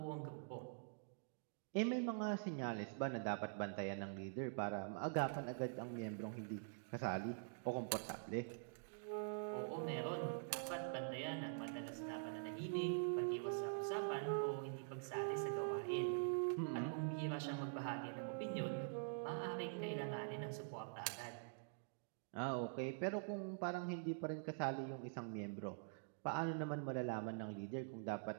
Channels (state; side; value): silent; left; digital silence